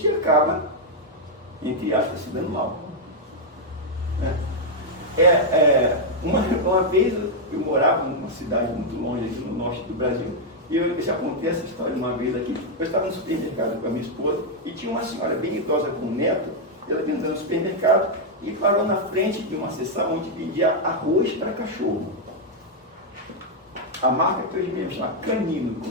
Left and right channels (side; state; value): both; normal; correlation -0.03